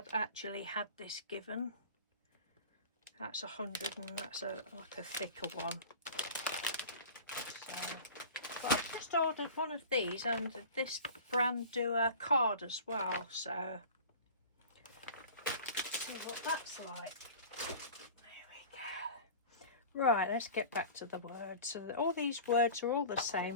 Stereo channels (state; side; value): inverted; both; correlation -0.38